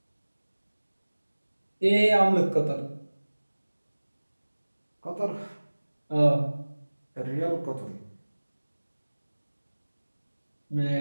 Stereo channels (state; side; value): inverted; both; correlation -1.00